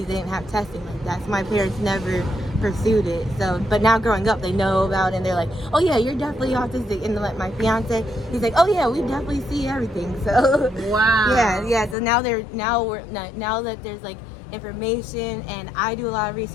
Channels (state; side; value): drops out; right; at 12.0 s